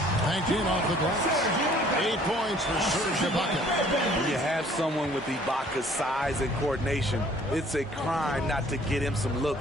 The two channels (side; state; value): both; normal; correlation 0.56